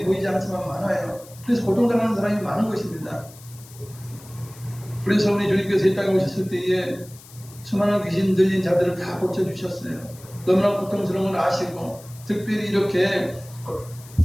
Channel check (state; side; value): noise; left; hiss, 21 dB below the sound